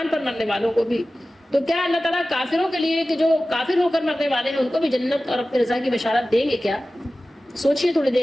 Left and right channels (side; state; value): both; normal; correlation 0.96